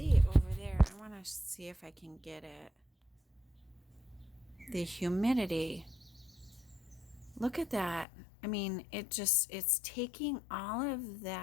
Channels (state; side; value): drops out; right; at 8.1 s